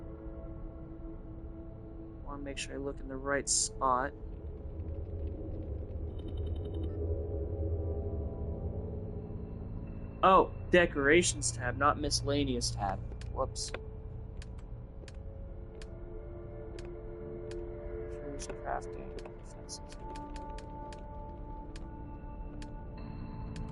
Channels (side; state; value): both; identical; correlation 1.00